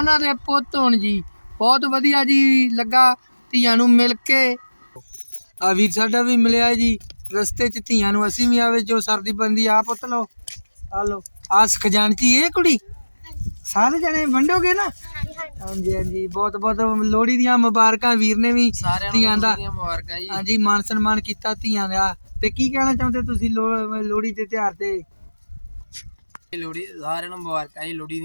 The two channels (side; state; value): both; inverted; correlation -1.00